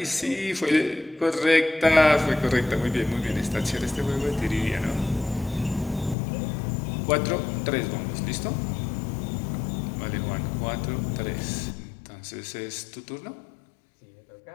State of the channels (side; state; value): right; drops out; at 6.2 s